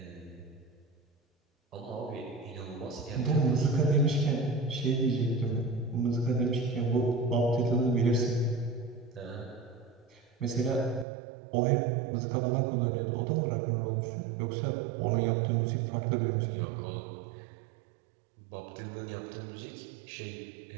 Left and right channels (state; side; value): drops out; left; at 11.1 s